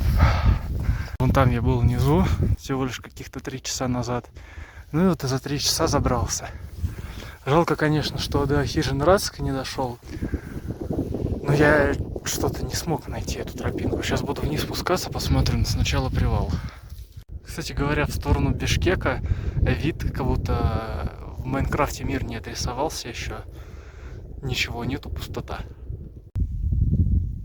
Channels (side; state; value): both; identical; correlation 1.00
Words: Вон там я был внизу, всего лишь каких-то 3 часа назад. Ну и вот за 3 часа забрался. Жалко, конечно, что до хижины Рацика не дошел. Но я что-то не смог найти эту тропинку. Сейчас буду вниз спускаться, посмотрим сначала привал. Кстати говоря, в сторону Бишкека вид, как будто в Майнкрафте мир не отрисовался еще. Ничего нету, пустота.